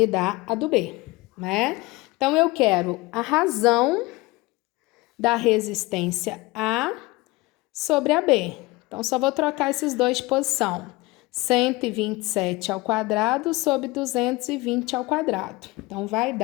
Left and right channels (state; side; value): quieter; right; 21.9 dB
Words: dar a do B, né? Então, eu quero a razão da resistência A sobre a B. Então, só vou trocar esses dois de posição. 127 ao quadrado sobre 220 ao quadrado. Então, vai